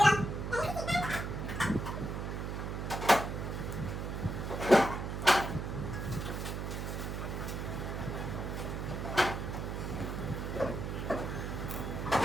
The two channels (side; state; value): right; noise; hum, 3 dB below the sound